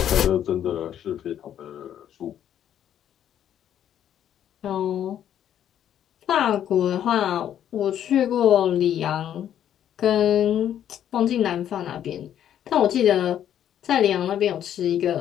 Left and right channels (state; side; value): quieter; right; 10.3 dB